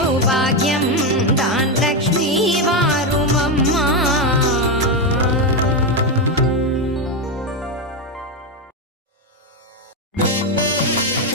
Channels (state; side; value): normal; both; correlation 0.09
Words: தான் லக்ஷ்மி வாரும் அம்மா.